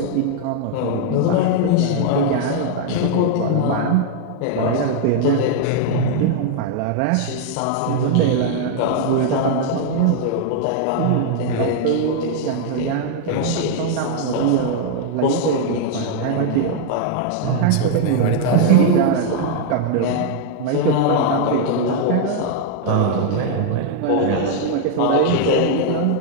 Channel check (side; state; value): both; different; correlation 0.00